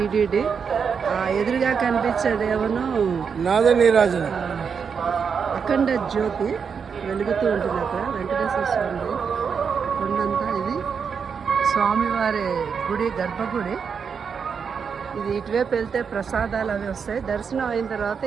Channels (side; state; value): left; quieter; 6.3 dB